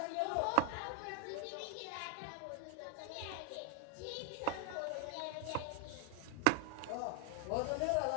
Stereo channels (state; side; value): different; both; correlation 0.01